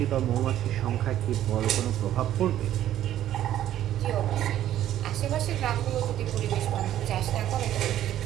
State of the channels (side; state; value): left; quieter; 12.1 dB